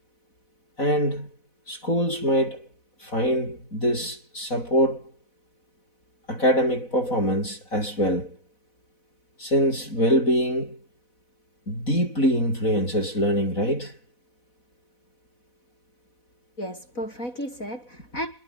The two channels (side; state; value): right; late; 4.1 ms